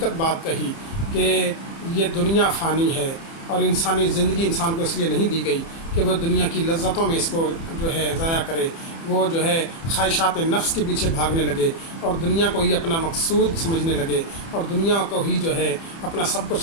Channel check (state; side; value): late; right; 30 ms